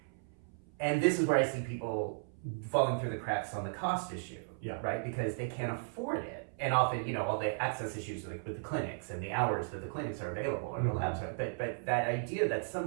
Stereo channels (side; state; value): left; silent; 54 dB below the other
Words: And this is where I see people falling through the cracks on the cost issue, right? Because they can't afford it. And often, all the access issues like with the clinics and the hours that the clinics are available or the labs are. But that idea that